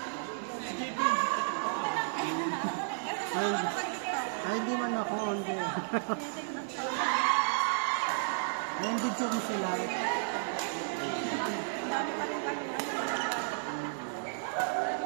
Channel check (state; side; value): silent; left; 56 dB below the other